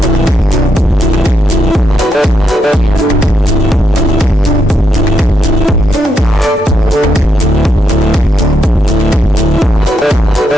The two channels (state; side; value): normal; both; correlation 0.80